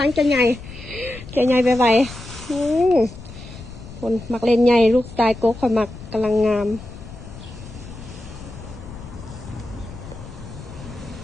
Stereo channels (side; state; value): left; noise; rumble, 14 dB below the sound